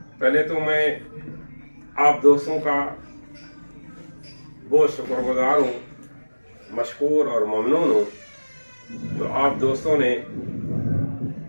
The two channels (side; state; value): both; inverted; correlation -1.00